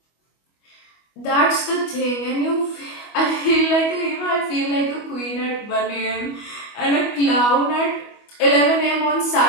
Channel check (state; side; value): late; right; 25 ms